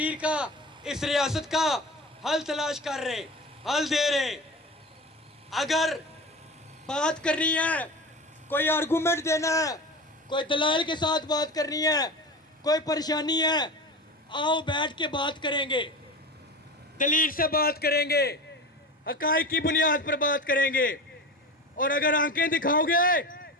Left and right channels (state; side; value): normal; both; correlation 0.30